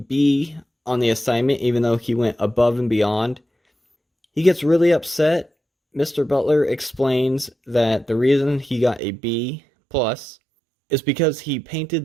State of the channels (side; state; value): left; drops out; at 9.0 s